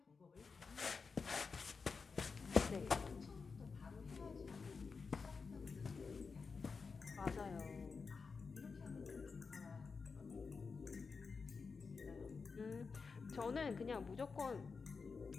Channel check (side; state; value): right; quieter; 4.9 dB